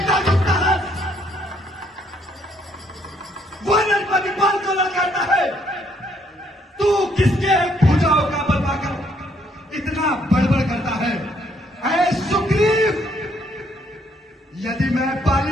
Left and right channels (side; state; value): both; normal; correlation 0.69